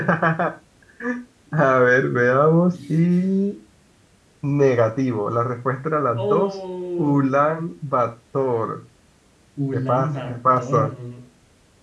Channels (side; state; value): both; identical; correlation 1.00